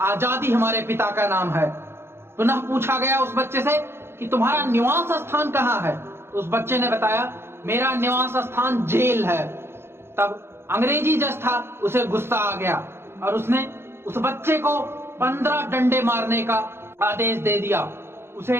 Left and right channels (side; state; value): left; late; 0.12 ms